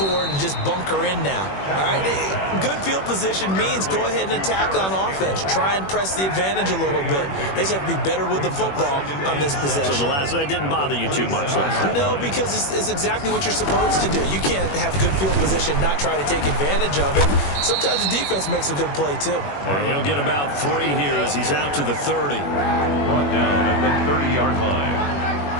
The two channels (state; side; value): late; right; 21 ms